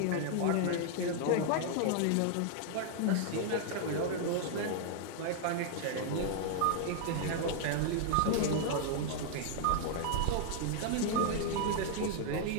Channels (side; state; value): both; different; correlation 0.00